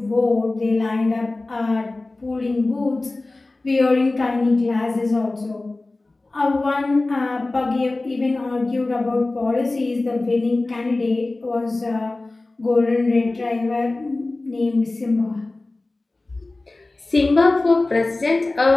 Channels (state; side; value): quieter; right; 3.1 dB